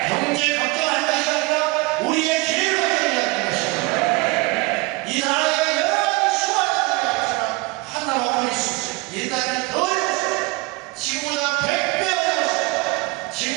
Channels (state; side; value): quieter; left; 24.0 dB